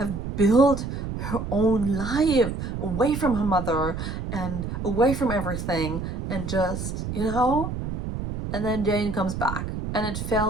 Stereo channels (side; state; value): right; noise; rumble, 5 dB below the sound